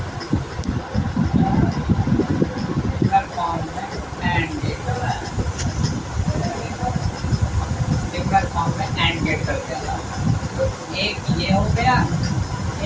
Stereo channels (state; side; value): identical; both; correlation 1.00